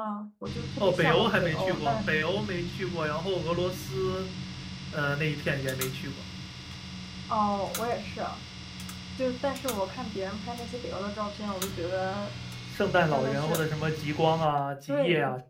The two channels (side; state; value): both; identical; correlation 1.00